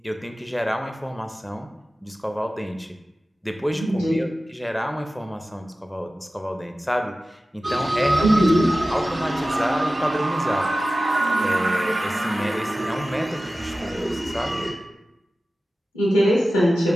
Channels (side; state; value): both; normal; correlation 0.95